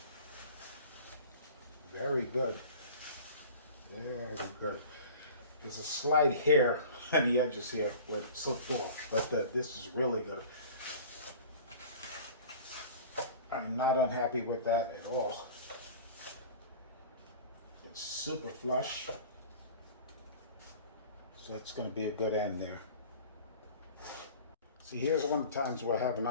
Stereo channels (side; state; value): both; inverted; correlation -0.41